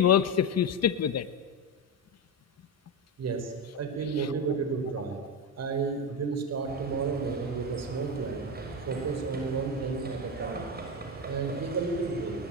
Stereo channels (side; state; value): both; normal; correlation 0.13